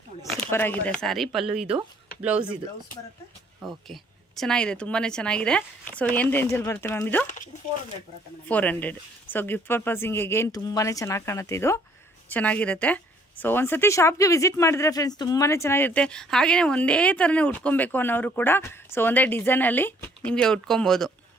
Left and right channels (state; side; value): normal; both; correlation 0.62